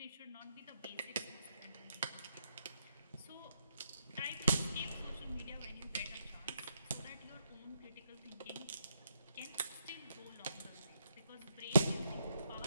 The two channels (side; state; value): both; inverted; correlation -0.79